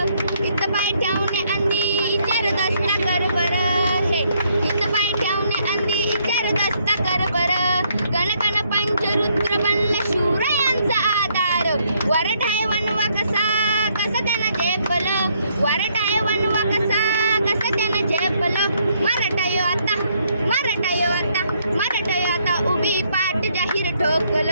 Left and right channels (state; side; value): inverted; both; correlation -0.71